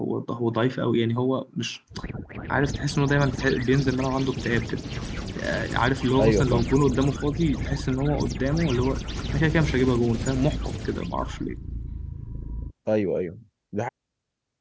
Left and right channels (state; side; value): identical; both; correlation 1.00